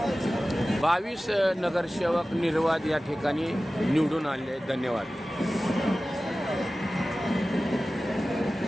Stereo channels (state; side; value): normal; both; correlation 0.96